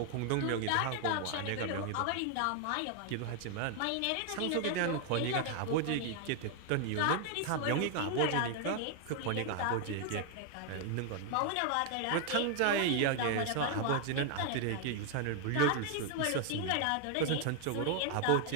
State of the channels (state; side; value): different; both; correlation 0.00